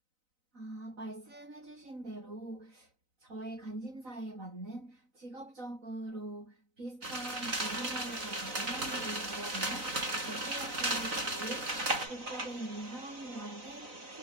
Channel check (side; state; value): left; late; 3.9 ms